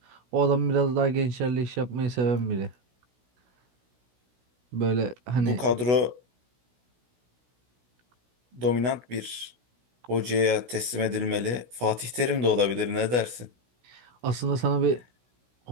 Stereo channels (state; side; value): late; left; 16 ms